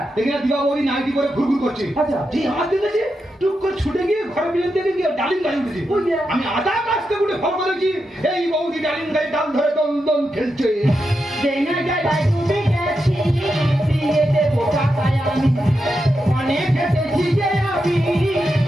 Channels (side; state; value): both; normal; correlation 0.86